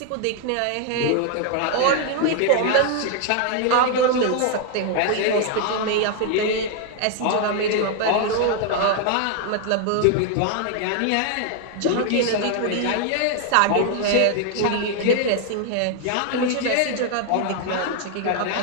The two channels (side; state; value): both; different; correlation 0.00